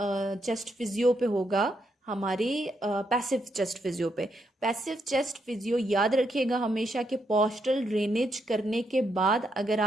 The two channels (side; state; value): both; normal; correlation 0.78